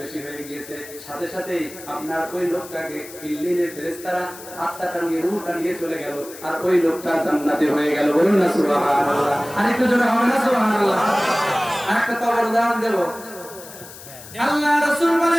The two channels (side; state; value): left; noise; hiss, 16 dB below the sound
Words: হয়ে গিয়েছে। সাথে সাথেই আপনার ওই লোকটাকে ইল্লিনের ফেরেশতারা আত্মাটা নিয়ে, রূহটা নিয়ে চলে গেল, আর ওই লোকটা জান্নাতে হয়ে গেল। বলুন না সুবহানাল্লাহ। আরেকটু জোরে হবে না সুবহানাল্লাহ? আরেকটা তওবার উদাহরণ দেব। আল্লাহ রাসূল